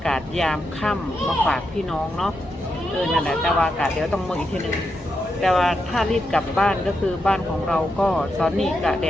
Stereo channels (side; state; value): both; normal; correlation 0.85